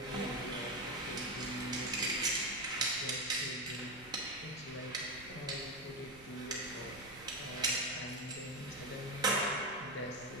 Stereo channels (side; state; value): right; noise; rumble, 19 dB below the sound